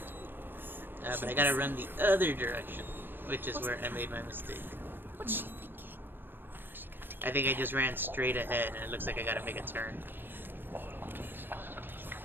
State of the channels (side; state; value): left; late; 0.098 ms